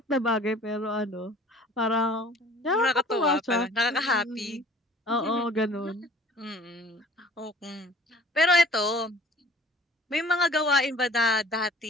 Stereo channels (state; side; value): normal; both; correlation 0.50